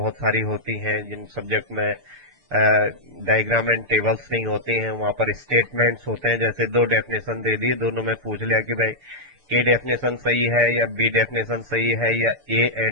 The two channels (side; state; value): left; late; 6.8 ms